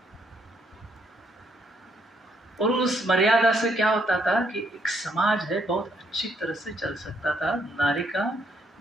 और उस मर्यादा से क्या होता था कि एक समाज है बहुत अच्छी तरह से चल सकता था, नारी का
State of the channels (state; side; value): normal; both; correlation 0.72